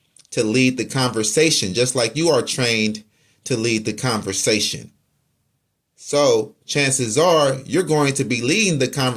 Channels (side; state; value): both; identical; correlation 1.00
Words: to lead the conversation, just like you are trained to lead the conversation. So chances are you're going to be leading the